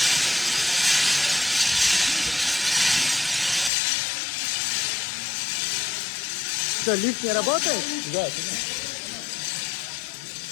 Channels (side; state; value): right; drops out; at 3.7 s